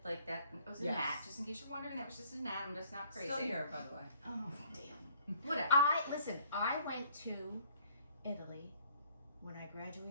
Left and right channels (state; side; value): inverted; both; correlation -0.61